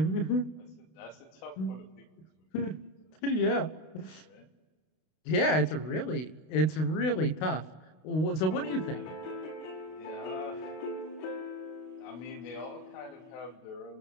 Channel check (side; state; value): right; late; 32 ms